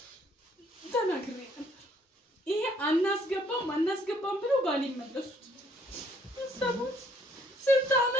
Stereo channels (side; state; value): both; normal; correlation 0.64